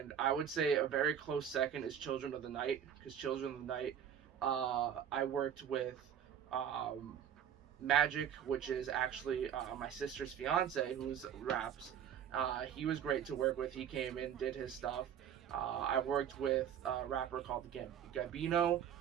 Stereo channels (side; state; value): left; quieter; 9.1 dB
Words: I would say a very close second is Children of the Night, because Children of the Night, I worked with Magic, which is actually my sister's fiance, who's raps. He was great to work with. He came in, did his stuff. I worked with a rapper called Gabino.